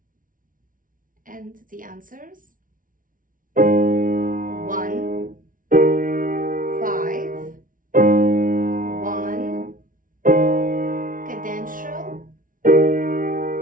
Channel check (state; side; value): late; left; 0.39 ms